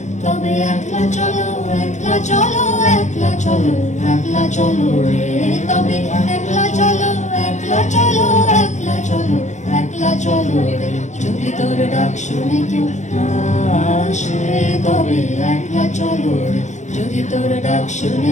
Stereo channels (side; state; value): right; late; 0.34 ms